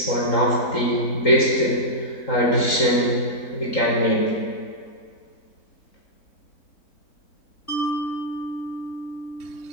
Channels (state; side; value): late; right; 3.8 ms